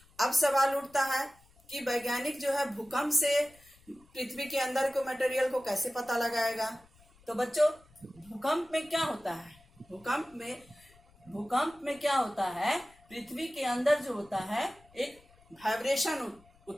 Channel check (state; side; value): noise; left; rumble, 29 dB below the sound